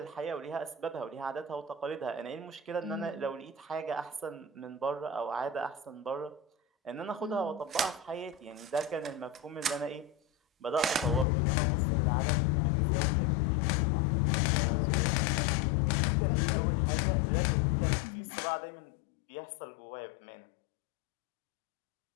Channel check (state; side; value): drops out; right; at 11.2 s